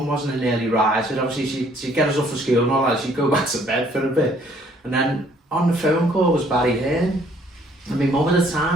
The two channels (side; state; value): both; normal; correlation 0.62